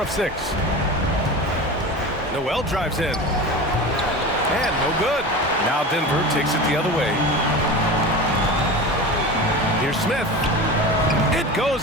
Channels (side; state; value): both; normal; correlation 0.30